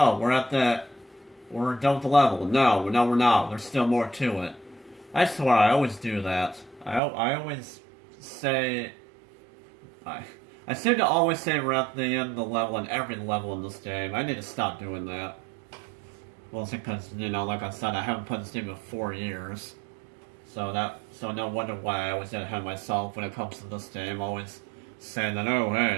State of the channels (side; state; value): left; drops out; at 7.0 s